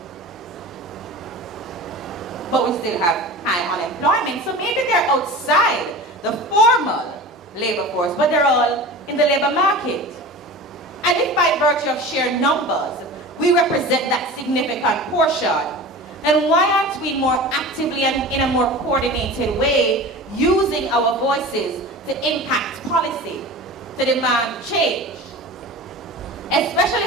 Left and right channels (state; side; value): normal; both; correlation 0.34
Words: But we still have high unemployment, so maybe they're outside the formal labor force, but they're all in the labor market. And if by virtue of sheer numbers, we represent that significant portion, then why aren't we more actively and in a more coordinated way using our voices to impact policy, to demand change?